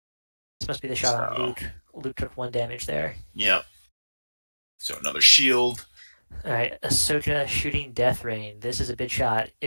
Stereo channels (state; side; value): inverted; both; correlation -1.00